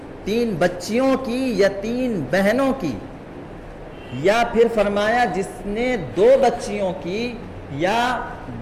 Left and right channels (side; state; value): both; identical; correlation 1.00